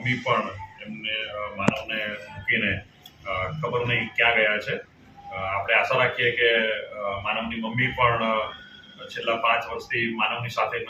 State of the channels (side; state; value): both; identical; correlation 1.00